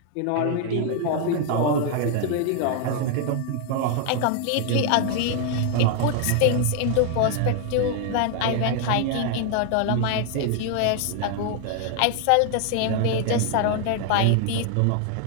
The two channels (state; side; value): different; both; correlation 0.00